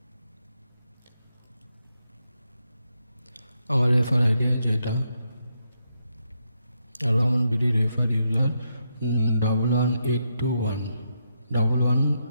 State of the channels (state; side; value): inverted; both; correlation -0.81